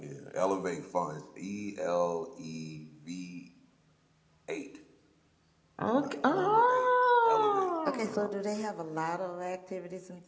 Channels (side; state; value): both; identical; correlation 1.00